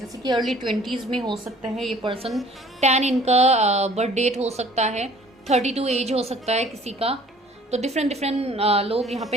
कि अर्ली 20s में हो सकता है ये पर्सन। 10 इनका बर्थ डेट हो सकता है, 32 एज हो सकता है किसी का। तो डिफरेंट लोग यहाँ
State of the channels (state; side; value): normal; both; correlation 0.53